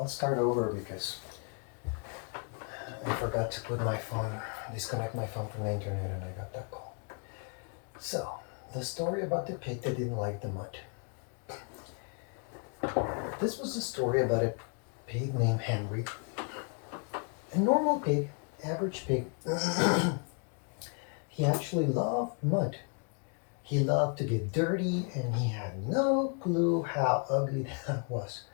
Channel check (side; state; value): right; quieter; 39.1 dB